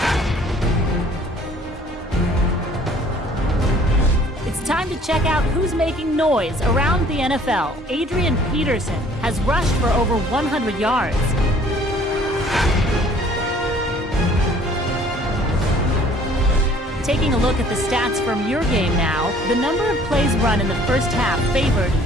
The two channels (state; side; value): normal; both; correlation 0.56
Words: It's time to check out who's making noise around the NFL. Adrian Peterson has rushed for over 100 yards. Taking a look at the stats from your game now, the number of plays run in the first half favored